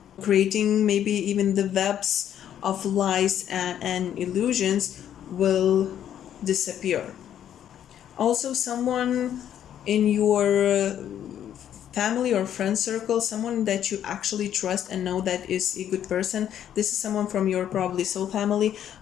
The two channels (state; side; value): quieter; right; 10.2 dB